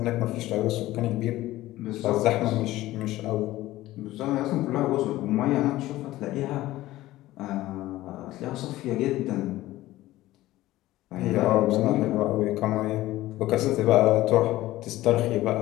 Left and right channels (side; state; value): right; quieter; 16.4 dB